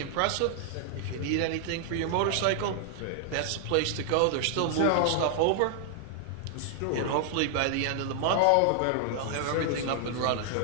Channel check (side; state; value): both; different; correlation 0.00